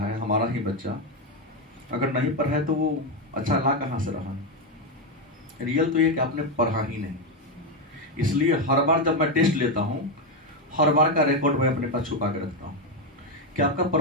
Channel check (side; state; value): both; normal; correlation 0.07